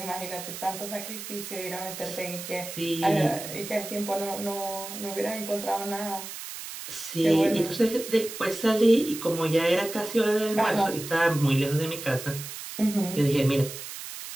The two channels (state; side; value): noise; right; hiss, 10 dB below the sound